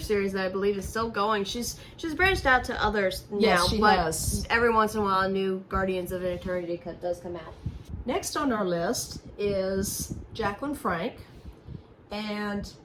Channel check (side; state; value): both; identical; correlation 1.00